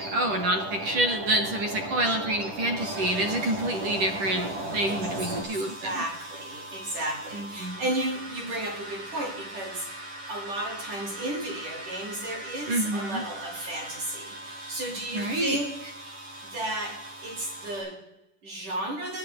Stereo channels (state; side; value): late; left; 10 ms